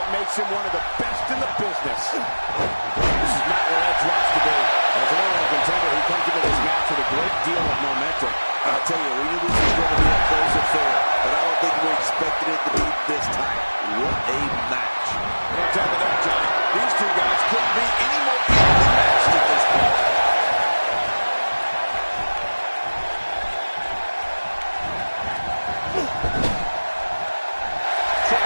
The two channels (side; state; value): both; inverted; correlation -1.00